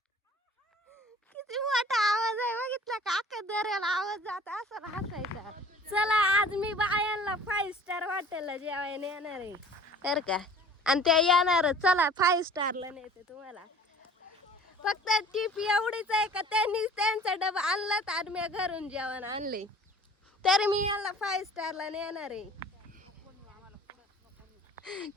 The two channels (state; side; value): normal; both; correlation 0.47